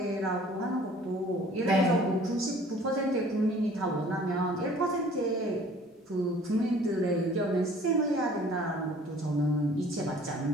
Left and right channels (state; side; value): normal; both; correlation 0.52